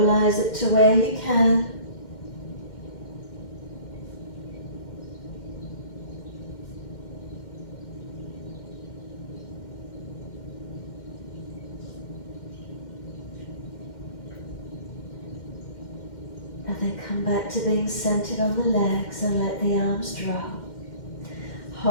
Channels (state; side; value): late; right; 2.1 ms